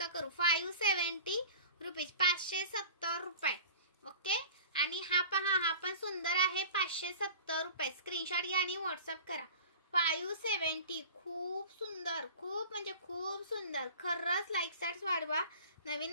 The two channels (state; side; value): inverted; both; correlation -0.39